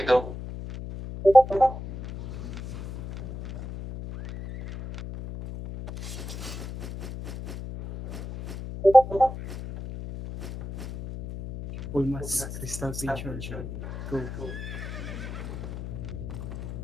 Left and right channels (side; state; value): left; noise; hum, 8 dB below the sound